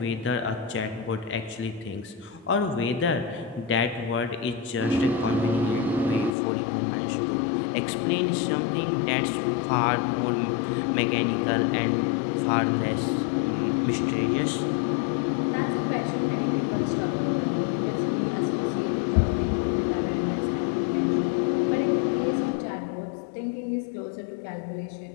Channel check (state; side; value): drops out; right; at 6.4 s